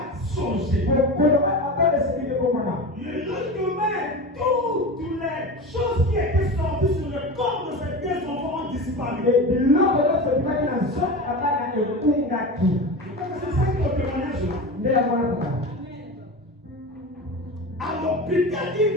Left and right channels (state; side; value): normal; both; correlation 0.27